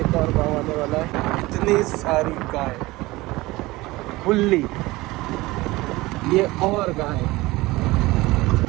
एक और गांव आने वाला है। इतनी सारी गाय खुली, ये और गाय,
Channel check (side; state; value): left; quieter; 20.3 dB